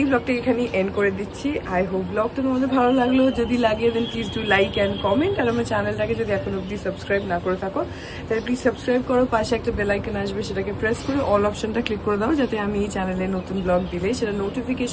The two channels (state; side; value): identical; both; correlation 1.00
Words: ব্লগটা এখানেই এন্ড করে দিচ্ছি। আই হোপ ব্লগটা তোমাদের ভালো লাগলো। যদি লাগে then please do like and comment. আর আমার চ্যানেলটাকে যদি এখন অব্দি সাবস্ক্রাইব না করে থাকো তাহলে প্লিজ সাবস্ক্রাইব করো। পাশে একটা বেল আইকন আসবে, সেটাকে প্রেস করে অল অপশনটা ক্লিক করে দাও, যাতে আমি এই চ্যানেলে নতুন ব্লগ দিলে সেটা